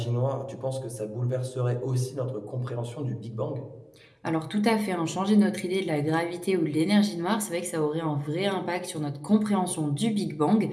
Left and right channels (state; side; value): identical; both; correlation 1.00